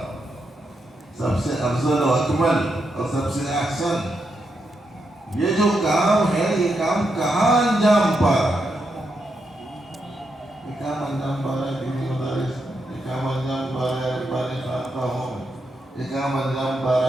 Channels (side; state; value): both; normal; correlation 0.83